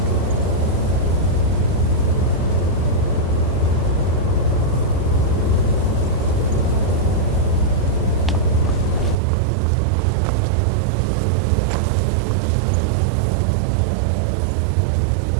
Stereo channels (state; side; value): drops out; left; at 9.2 s